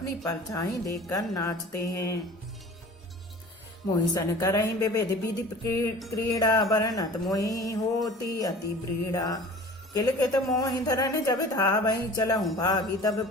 परछाई देखकर नाचते हैं। मोहि सन करहि विविध विधि क्रीड़ा वर्णत मोहि होती अति ब्रीड़ा। किलकित मोहि धरन जब धावहि चलहु भागी तब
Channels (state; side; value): normal; both; correlation 0.42